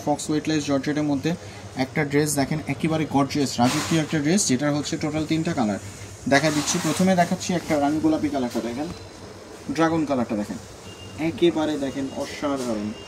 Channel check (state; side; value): identical; both; correlation 1.00